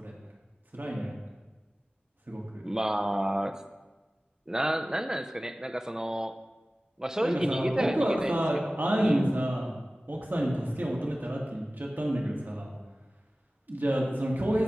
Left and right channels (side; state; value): both; normal; correlation 0.97